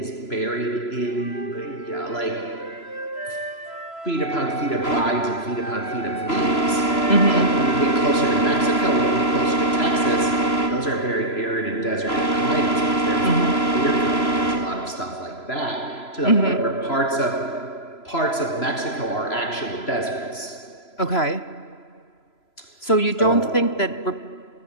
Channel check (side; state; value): right; late; 3.0 ms